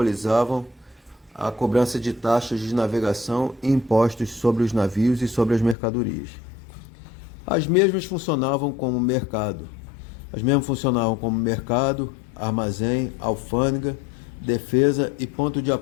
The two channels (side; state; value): right; drops out; at 5.8 s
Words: a cobrança de taxas de navegação e impostos sobre os navios e sobre as mercadorias. As mesmas funcionavam como mercado. Armazém, alfândega, defesa e ponto de